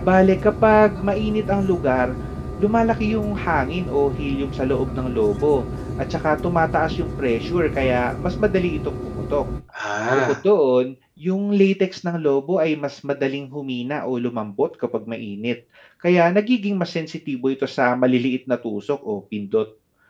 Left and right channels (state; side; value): identical; both; correlation 1.00